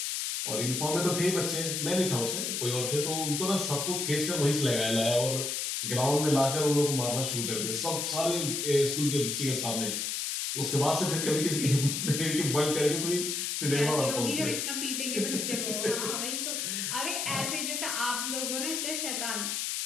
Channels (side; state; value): left; noise; hiss, 1 dB below the sound